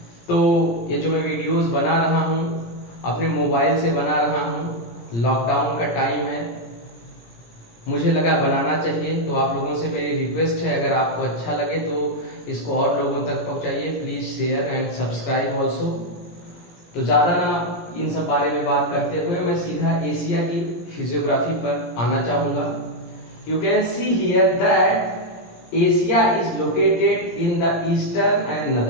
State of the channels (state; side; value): late; right; 17 ms